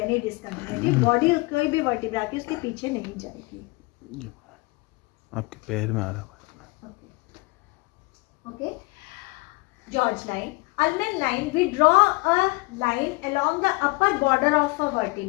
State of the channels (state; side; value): quieter; right; 24.9 dB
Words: any discontinuity. Body कोई भी vertebra की उसके पीछे नहीं जाएगी। आपके पैर में आ रहा है। Okay, George line. Ullmann line, we draw a line along the upper border of a